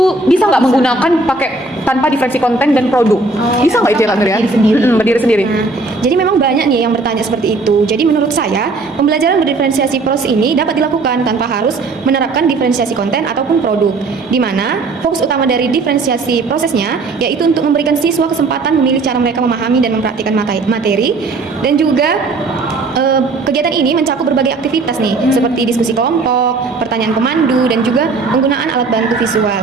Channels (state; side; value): quieter; left; 3.5 dB